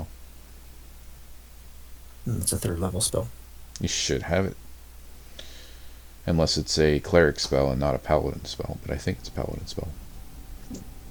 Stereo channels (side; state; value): both; identical; correlation 1.00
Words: It's a third level spell. You should have it. Unless it's a cleric spell and not a paladin spell, but I think it's a paladin spell.